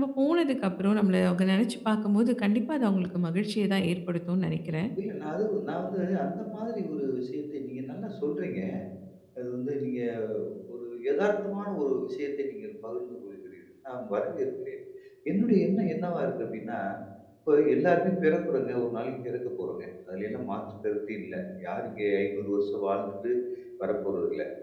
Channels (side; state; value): both; identical; correlation 1.00